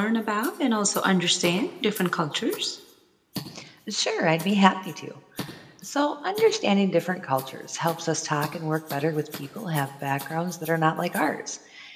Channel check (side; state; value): both; identical; correlation 1.00